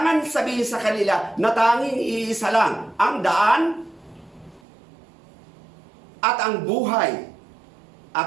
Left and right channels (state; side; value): drops out; left; at 4.6 s